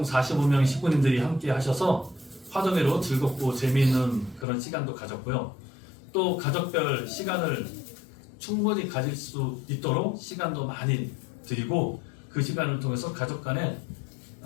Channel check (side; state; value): right; drops out; at 4.5 s